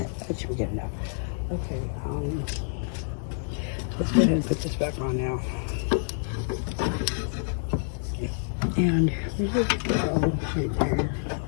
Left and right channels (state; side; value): silent; right; digital silence